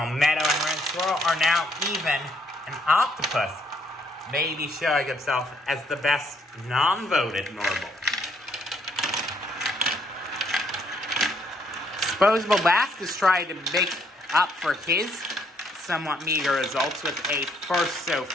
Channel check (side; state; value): both; normal; correlation 0.69